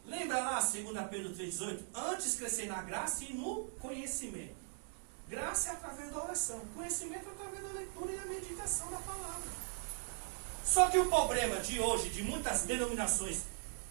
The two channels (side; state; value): left; silent; 52 dB below the other